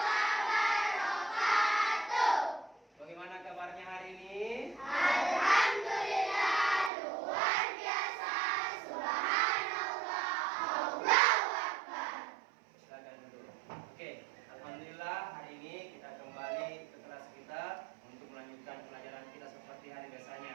Bagaimana kabarnya hari ini? Alhamdulillah, luar biasa. Subhanallah, Allahu Akbar. Silakan dulu. Oke, alhamdulillah hari ini kita kembali ke kelas kita untuk melanjutkan pelajaran kita seperti hari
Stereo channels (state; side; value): drops out; left; at 6.9 s